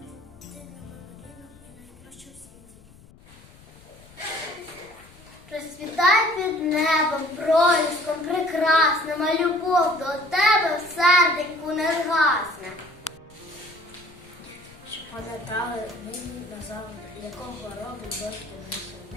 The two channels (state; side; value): noise; left; rumble, 24 dB below the sound